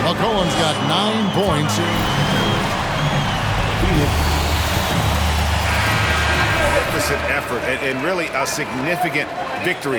McCollum's got 9 points. Deficit effort and really a significant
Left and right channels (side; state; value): both; identical; correlation 1.00